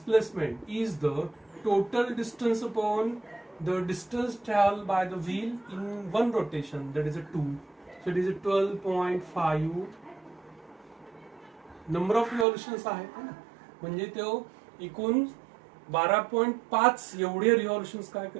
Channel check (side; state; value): left; drops out; at 12.5 s